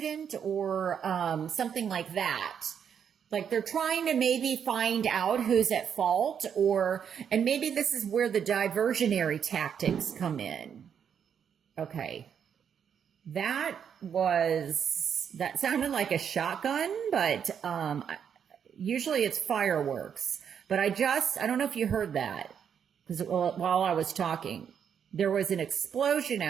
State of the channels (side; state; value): left; quieter; 7.9 dB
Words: or something like that. Like they're trying to maybe find out who's at fault, and maybe this is where the diversionary tactics come in. Okay. That sounded like a shotgun, but usually it's fireworks. But I don't know if you heard that, because while I was talking, there was an explosion